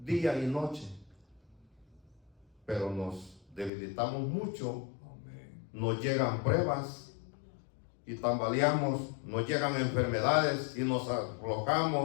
y noche. Pero nos debilitamos mucho, nos llegan pruebas y tambaleamos, nos llegan enfermedades y nos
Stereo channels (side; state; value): right; drops out; at 3.7 s